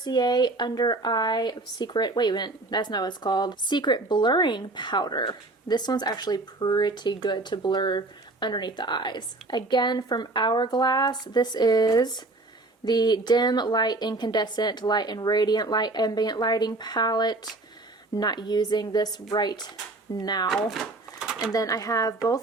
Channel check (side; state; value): left; quieter; 3.0 dB